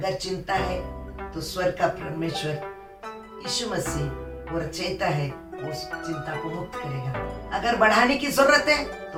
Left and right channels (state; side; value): identical; both; correlation 1.00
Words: चिंता है तो स्वर्ग का परमेश्वर यीशु मसीह वो रचयिता है, वो उस चिंता को मुक्त करेगा। अगर बढ़ाने की जरूरत है